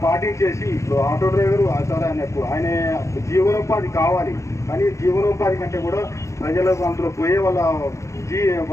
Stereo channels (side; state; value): right; late; 0.14 ms